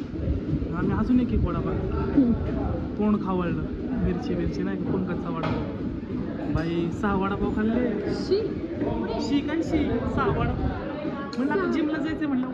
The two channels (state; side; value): identical; both; correlation 1.00